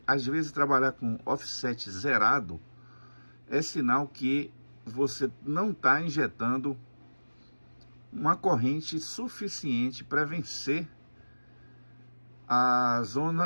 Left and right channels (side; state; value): both; inverted; correlation -1.00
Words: às vezes trabalhar com offset zerado é sinal que você não está injetando uma corrente suficiente para vencer a